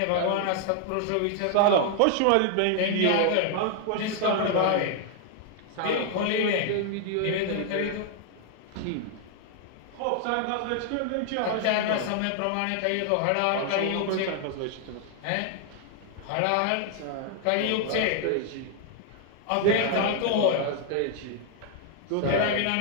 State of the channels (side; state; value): both; different; correlation 0.00